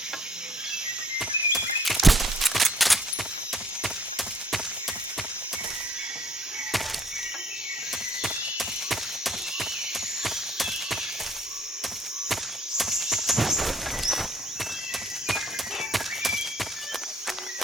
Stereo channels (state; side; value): normal; both; correlation 0.62